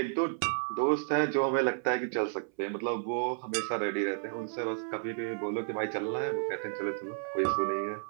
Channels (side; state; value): left; silent; 57 dB below the other